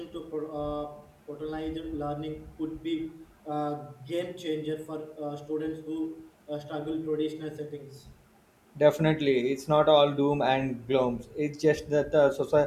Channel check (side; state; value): both; identical; correlation 1.00